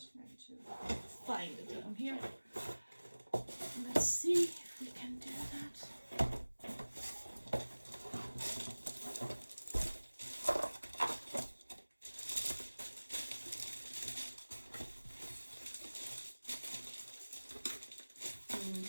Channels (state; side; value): inverted; both; correlation -1.00